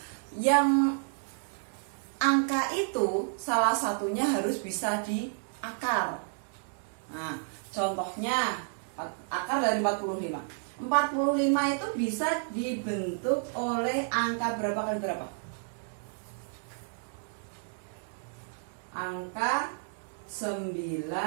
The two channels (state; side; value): silent; left; 57 dB below the other